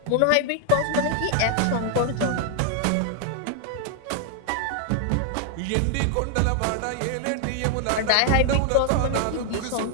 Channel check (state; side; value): different; both; correlation 0.00